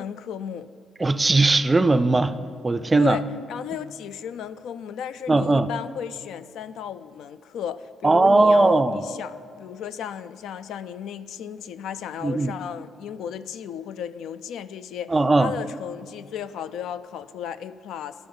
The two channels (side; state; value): both; normal; correlation 0.90